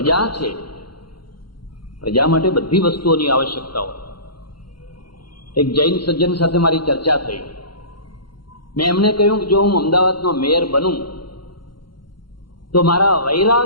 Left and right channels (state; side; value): late; right; 0.72 ms